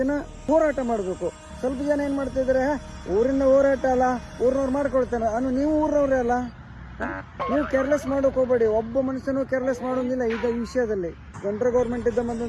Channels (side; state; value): both; identical; correlation 1.00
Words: ದಿನ ಹೋರಾಟ ಮಾಡಬೇಕು. ಸ್ವಲ್ಪ ಜನ ಏನ್ ಮಾಡ್ತಾ ಇದಾರೆ, ಊರಿನ ಹೋರಾಟ ಅಲ್ಲ, ಊರಿನವ್ರು ಮಾಡ್ಕೊಳ್ತಾನೆ. ನೀವು ಊರಿನವ್ರೇ ಅಲ್ಲ, ನೀವು ಕೇರ್ಲೆಸ್ ಮಾಡೋಕೆ ಹೋಗ್ಬೇಡಿ. ಒಬ್ಬ ಮನುಷ್ಯನು ಕೇರ್ಲೆಸ್ ಮಾಡೋದಿಲ್ಲ ಈ ವಿಷಯದಲ್ಲಿ. ಸೆಂಟ್ರಲ್ ಗೌರ್ಮೆಂಟ್ ಇದ್ದ